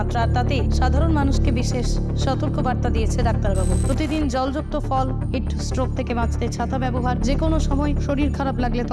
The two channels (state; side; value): identical; both; correlation 1.00